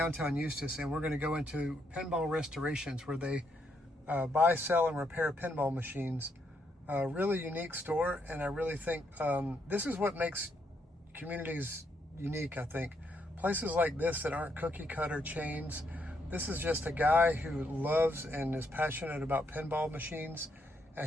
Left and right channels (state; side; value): normal; both; correlation 0.76